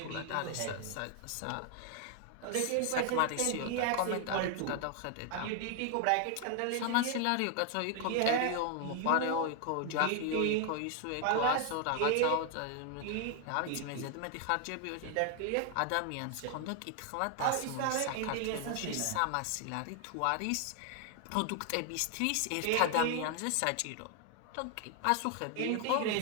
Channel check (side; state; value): both; different; correlation 0.00